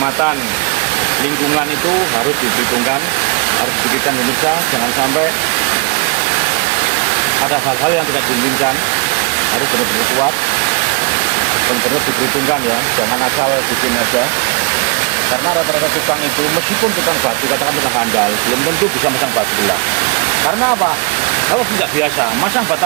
lingkungan itu harus diperhitungkan, harus dipikirkan pemirsa, jangan sampai ada hal-hal yang tidak diinginkan, harus benar-benar kuat, benar-benar diperhitungkan ya, jangan asal bikin aja. Karena rata-rata tukang itu, meskipun tukang batu, katakan tukang handal, belum tentu bisa masang batu belah. Karena apa? Kalau tidak biasa, masang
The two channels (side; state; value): left; quieter; 32.0 dB